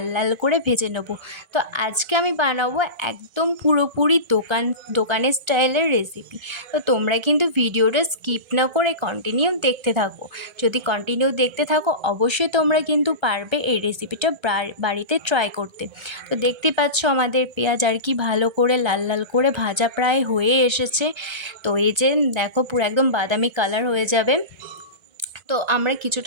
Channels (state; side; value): late; left; 1.3 ms